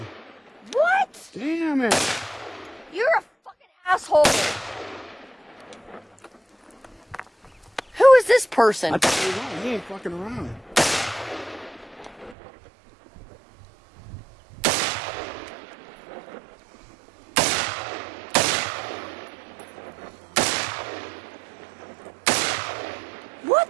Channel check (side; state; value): left; drops out; at 12.4 s